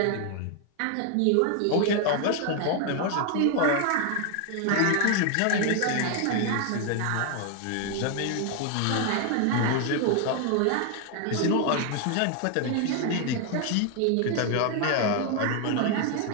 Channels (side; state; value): both; different; correlation 0.00